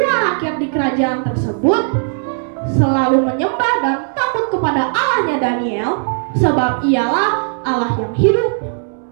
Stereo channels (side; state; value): left; silent; 65 dB below the other